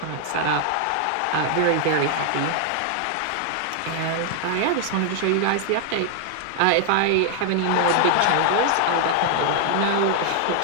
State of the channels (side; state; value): both; different; correlation 0.00